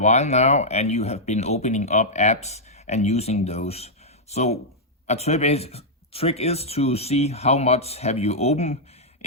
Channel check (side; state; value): both; normal; correlation -0.08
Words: now and you have been opening up apps and using those. So a trick is to see how much have you opened